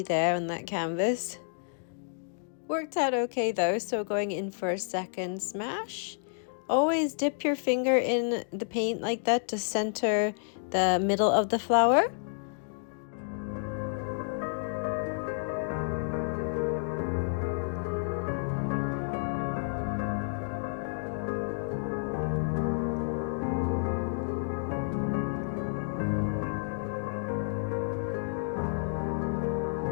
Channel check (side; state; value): right; silent; digital silence